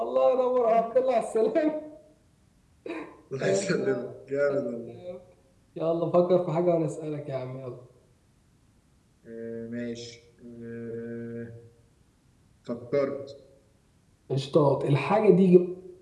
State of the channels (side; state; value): both; identical; correlation 1.00